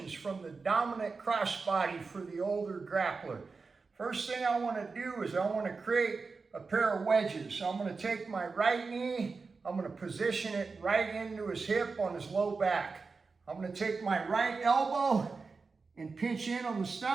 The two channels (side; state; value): left; quieter; 4.4 dB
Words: from the dominant crossbody for the older grappler. First thing I want to do is I want to create a pair of wedges. So I'm going to take my right knee, I'm going to position it right into his hip on his low back. I'm going to take my right elbow and pinch in on the